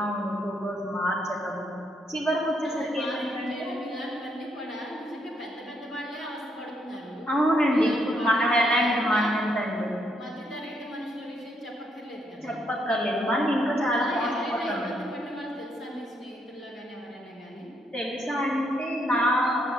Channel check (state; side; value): normal; both; correlation 0.75